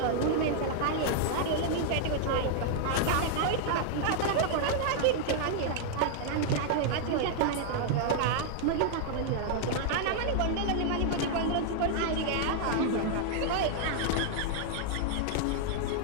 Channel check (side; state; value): both; different; correlation 0.00